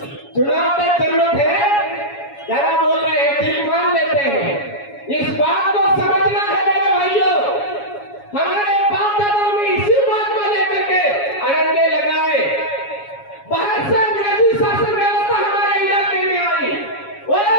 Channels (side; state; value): right; late; 7.2 ms